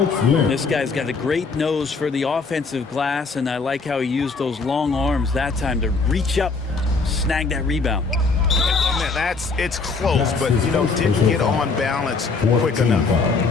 This guy's got a great nose for the offensive glass, and I like how he used those long arms that time to reach up, snag that rebound. Man, it's close, but didn't get on balance quick enough.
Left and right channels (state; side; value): quieter; right; 4.4 dB